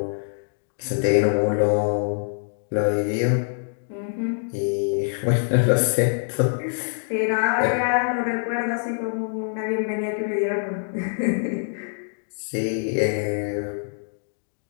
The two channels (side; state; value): right; silent; digital silence